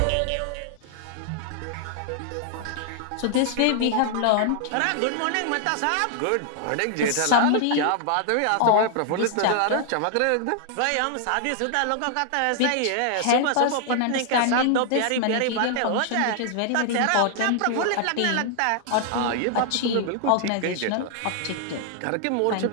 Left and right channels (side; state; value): both; different; correlation 0.00